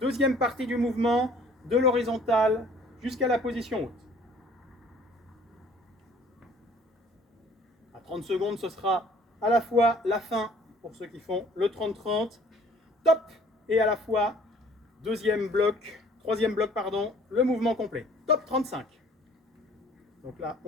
Deuxième partie du mouvement, de l'horizontale jusqu'à la position haute. À 30 secondes, ce sera à la fois la fin pour ceux qui font le 30-30. Top. Et à la fois troisième bloc, pardon, le mouvement complet. Top 35. Donc là,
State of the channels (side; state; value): both; normal; correlation 0.55